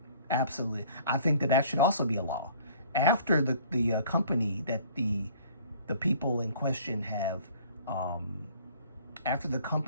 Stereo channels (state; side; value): inverted; both; correlation -0.53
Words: absolutely. I think that that should also be a law. After the company that the people in question have, after the